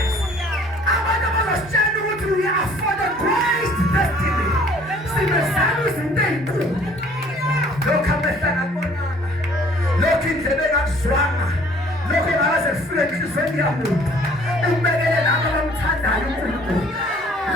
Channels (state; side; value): normal; both; correlation 0.55